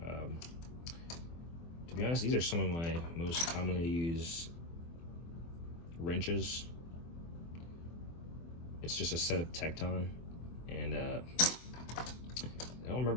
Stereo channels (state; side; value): late; right; 24 ms